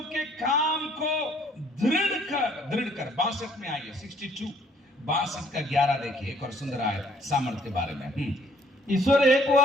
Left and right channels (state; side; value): normal; both; correlation 0.62